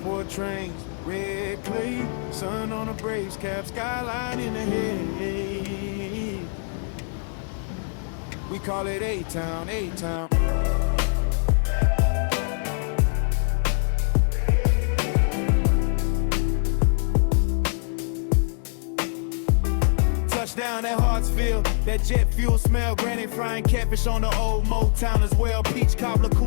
trains, red clay, sun on a Braves cap, skyline in the head. We call it A-Town, A-Town. Touchdown at Hartsfield, that jet fuel smell, granny frying catfish on the old Motown as well. Peach cobbler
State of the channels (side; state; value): right; silent; 62 dB below the other